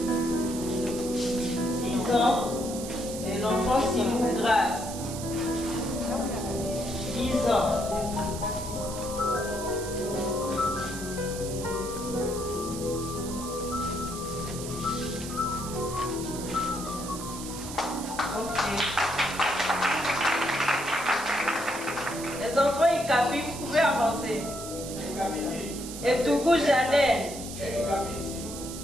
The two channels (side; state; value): right; noise; hiss, 10 dB below the sound